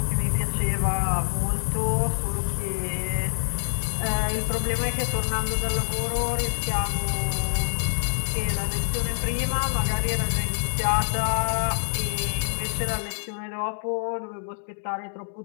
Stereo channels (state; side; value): silent; right; digital silence